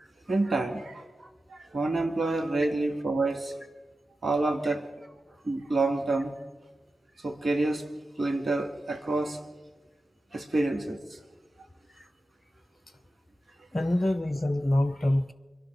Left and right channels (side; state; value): both; normal; correlation 0.92